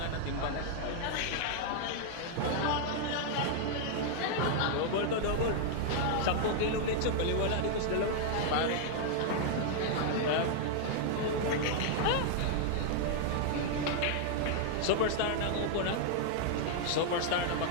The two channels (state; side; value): different; both; correlation 0.00